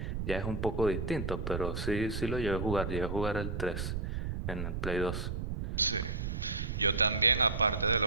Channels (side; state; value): right; noise; rumble, 3 dB below the sound